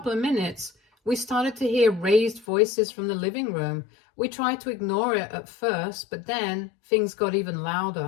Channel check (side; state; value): right; drops out; at 2.5 s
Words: of minutes, we started to hear raised voices from the living room. We tried to ignore it at first, but then things got even